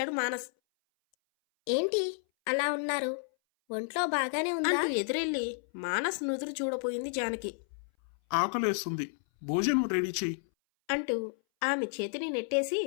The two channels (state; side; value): silent; right; 57 dB below the other